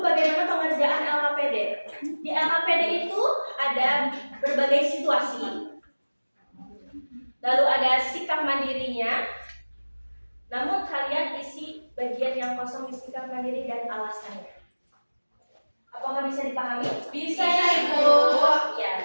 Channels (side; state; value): both; inverted; correlation -1.00